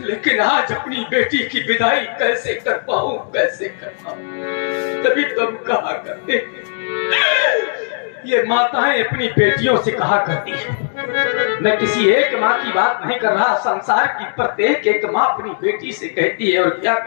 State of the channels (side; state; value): right; silent; digital silence